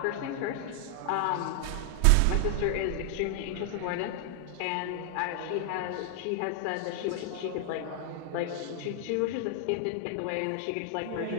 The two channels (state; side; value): different; both; correlation 0.00